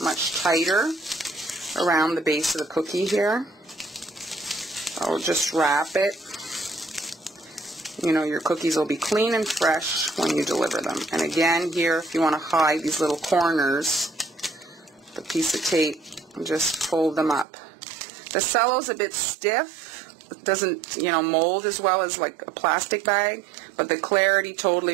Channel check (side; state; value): left; drops out; at 17.4 s